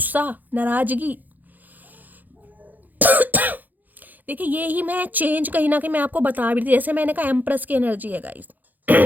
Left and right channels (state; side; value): late; left; 0.084 ms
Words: नाराजगी देखिए ये ही मैं चेंज कहीं ना कहीं मैं आपको बता भी थी, जैसे मैंने कहा एम्प्रेस की एनर्जी है गाइस